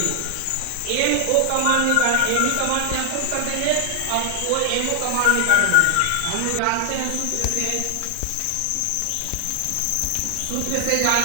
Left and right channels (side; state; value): both; different; correlation 0.00